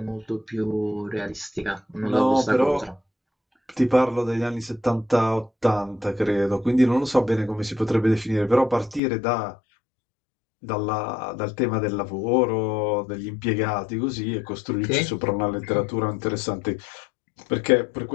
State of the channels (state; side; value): drops out; right; at 9.0 s